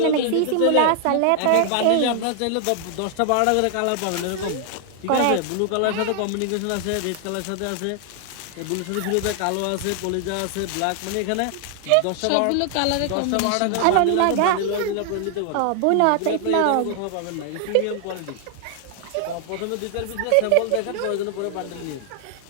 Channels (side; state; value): both; different; correlation 0.00